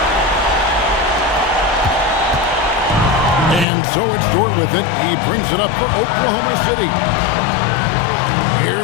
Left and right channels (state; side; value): drops out; right; at 3.7 s